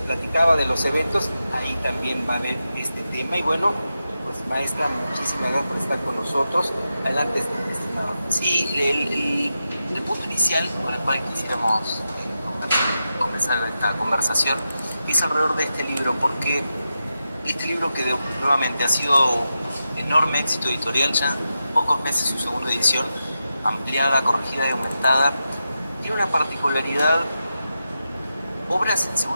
platicaba de los eventos, ahí también va a haber este tema. Y bueno, pues maestra, muchísimas gracias por estar con nosotros. Adelante, estimado. Sí, el punto inicial con el cual quisiéramos comenzar esta conversación es alrededor de este libro, porque este libro que nuevamente ha sido un enorme éxito editorial, ya en pocos meses su segunda edición, ampliada, corregida y aumentada, tiene una particularidad. Obras en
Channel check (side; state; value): both; inverted; correlation -0.90